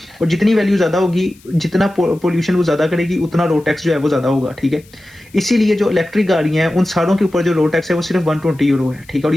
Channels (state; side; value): noise; left; hiss, 28 dB below the sound